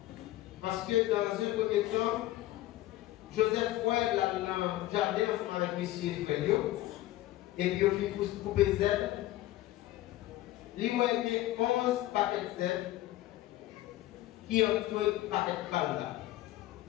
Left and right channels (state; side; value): quieter; right; 15.6 dB